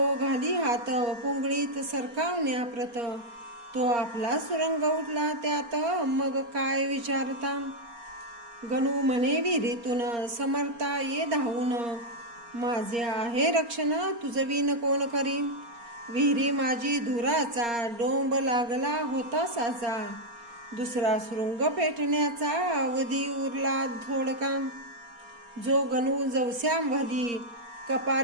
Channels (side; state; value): left; late; 4.3 ms